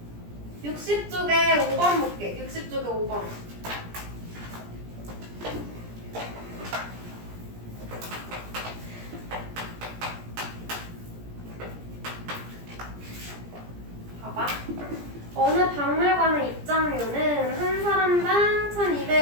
60쪽에 5번 볼게. 60쪽에 5번. 봐봐. 어느 박물관의 입장료는 한 사람당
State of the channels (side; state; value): left; late; 17 ms